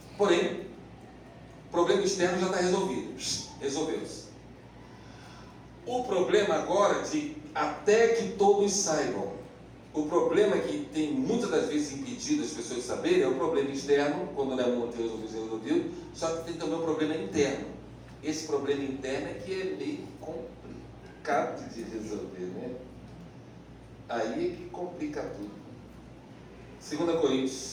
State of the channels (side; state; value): both; identical; correlation 1.00